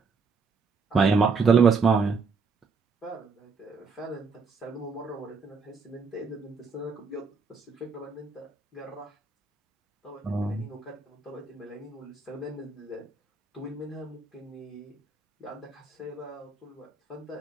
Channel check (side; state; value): left; quieter; 4.7 dB